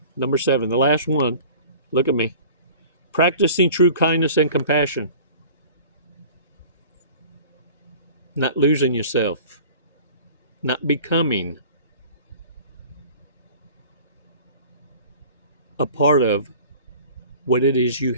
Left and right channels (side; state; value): both; inverted; correlation -0.44